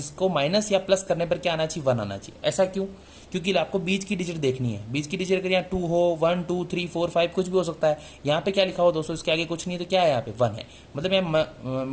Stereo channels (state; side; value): identical; both; correlation 1.00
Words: माइनस या प्लस करने पर क्या आना चाहिए, 1 आना चाहिए। ऐसा क्यों, क्योंकि आपको बीच की डिजिट देखनी है। बीच की डिजिट अगर यहाँ 2 हो, 1 2 3 4 5 कुछ भी हो सकता है। यहाँ पे क्या लिखा हो दोस्तों, इसके आगे कुछ नहीं है, तो क्या है यहाँ पे 1 है, मतलब यहाँ